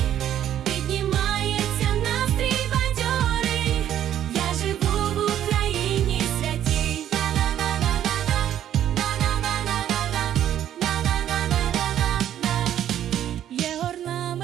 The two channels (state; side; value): quieter; left; 11.0 dB